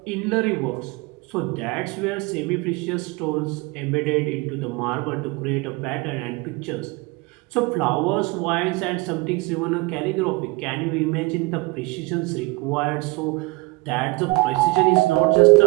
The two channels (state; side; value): quieter; left; 24.1 dB